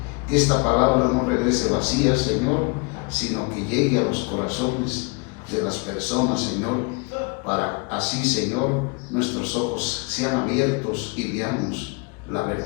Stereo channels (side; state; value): right; quieter; 30.7 dB